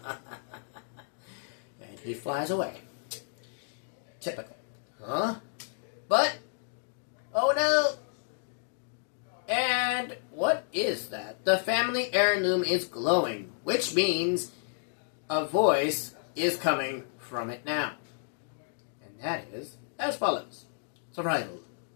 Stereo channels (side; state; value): right; silent; digital silence